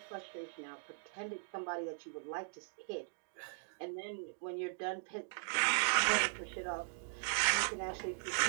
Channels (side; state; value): left; silent; digital silence